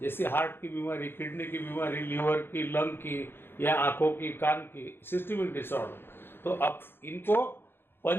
हार्ट की बीमारी, किडनी की बीमारी, लीवर की, लंग की, या आंखों की, कान की, सिस्टमिक डिसऑर्डर, तो अब इनको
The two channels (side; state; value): right; late; 0.10 ms